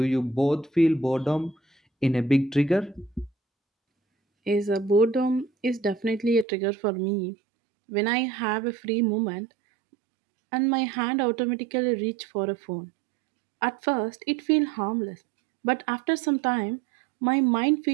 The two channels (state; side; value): drops out; left; at 6.5 s